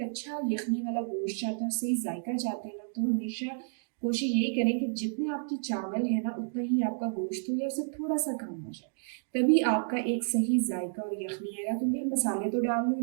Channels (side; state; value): left; silent; digital silence